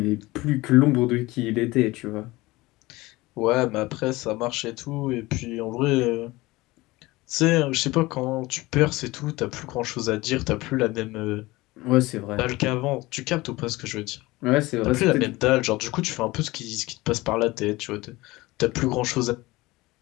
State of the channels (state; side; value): quieter; right; 20.4 dB